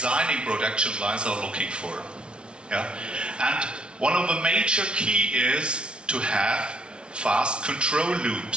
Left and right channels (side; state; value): left; late; 0.057 ms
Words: production lines are looking for. Yeah, and one of the major key is to have fast control